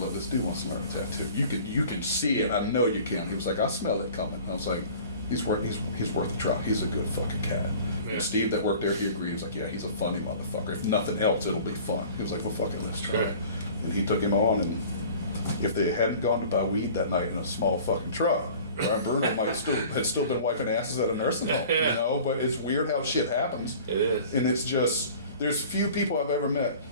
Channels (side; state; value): both; inverted; correlation -0.45